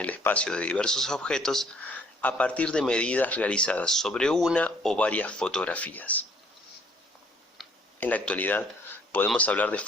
espacio de diversos objetos a partir de medidas realizadas sobre una o varias fotografías. En la actualidad podemos hablar de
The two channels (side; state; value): both; normal; correlation 0.61